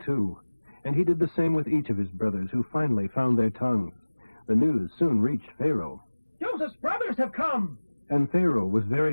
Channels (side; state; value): both; inverted; correlation -1.00